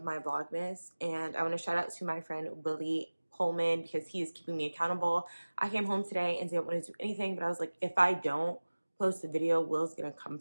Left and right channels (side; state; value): both; inverted; correlation -1.00